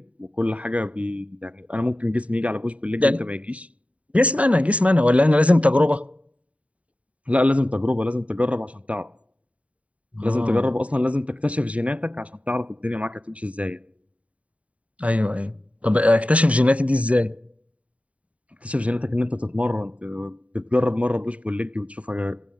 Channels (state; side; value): late; left; 0.066 ms